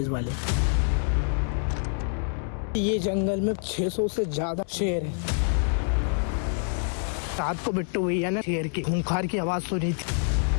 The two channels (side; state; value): right; silent; 60 dB below the other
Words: वाले। ये जंगल में 600 से ज्यादा शेर है। रात को बिट्टू भैया ने शेर की खूंखार की आवाज सुनी थी।